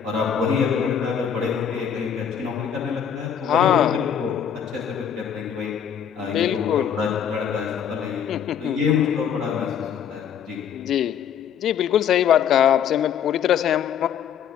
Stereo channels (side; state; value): right; quieter; 8.4 dB